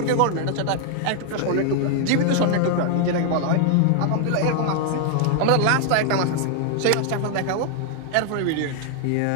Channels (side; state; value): both; different; correlation 0.00